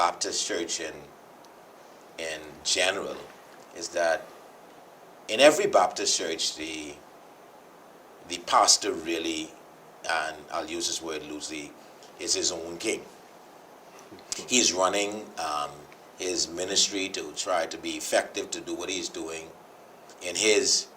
Church in general is that in every Baptist church, the pastor really, and I'll use this word loosely, is his own king. He's running his ministry to try to be effective, to do what he's doing in his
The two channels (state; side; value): identical; both; correlation 1.00